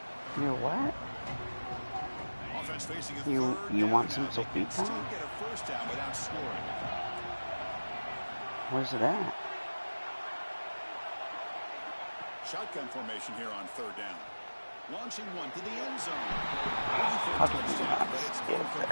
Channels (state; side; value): inverted; both; correlation -1.00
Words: You what? Offense facing a You third want down some now. They can sopita? still get a first down without scoring. Where's it at? Shotgun formation here on third down. Launching one to the end zone. How did you not But it's skip incomplete.